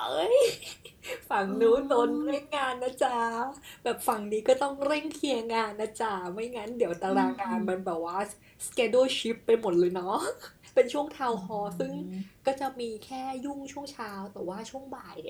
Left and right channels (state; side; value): identical; both; correlation 1.00